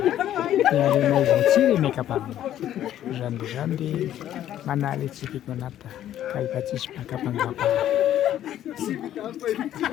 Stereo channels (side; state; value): right; quieter; 11.8 dB